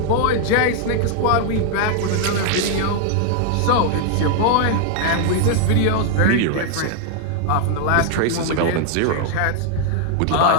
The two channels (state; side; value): different; both; correlation 0.00